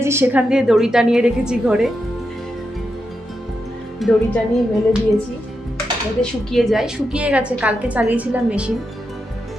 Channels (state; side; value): normal; both; correlation 0.86